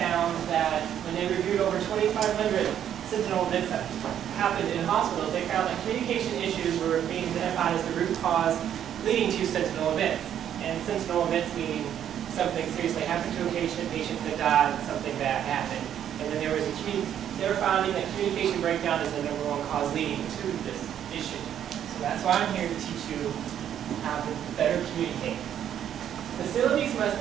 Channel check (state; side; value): quieter; left; 10.0 dB